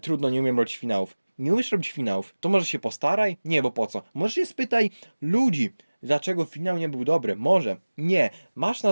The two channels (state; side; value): inverted; both; correlation -1.00